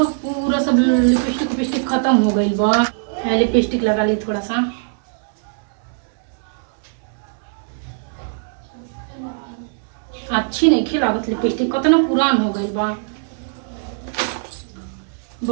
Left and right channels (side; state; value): left; silent; digital silence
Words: पूरा सब लिपस्टिक खत्म हो गइल बा। लिपस्टिक लगा ली थोड़ा सा। अच्छी नहीं लागत लिपस्टिक कतना पुरान हो गइल बा।